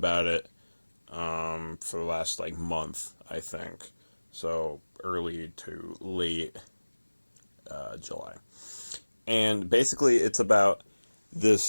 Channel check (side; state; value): both; inverted; correlation -1.00